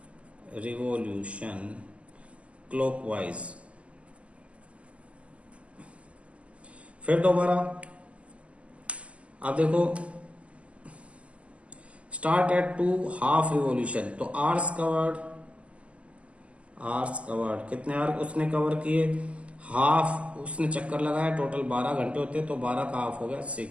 revolution clockwise। फिर दोबारा आप देखो, स्टार्ट एट 2 हाफ रिवॉल्यूशन, तो आर्स कवर्ड कितने आर उसने कवर किए, हाफ उसने चक्कर लगाया, टोटल 12 घंटे होते हैं, तो 12 का हाफ हो गया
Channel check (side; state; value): left; late; 0.060 ms